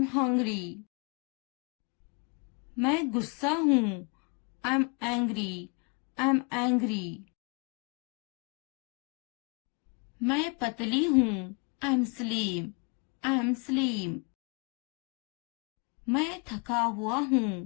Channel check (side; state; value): right; quieter; 34.2 dB